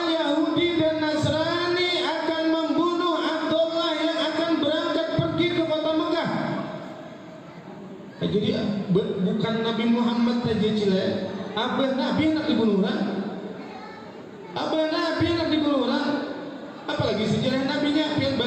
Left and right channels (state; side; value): identical; both; correlation 1.00